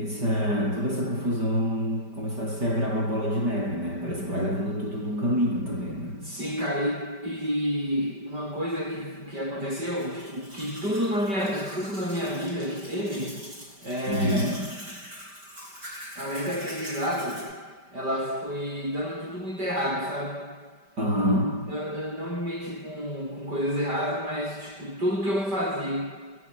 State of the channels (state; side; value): late; left; 5.1 ms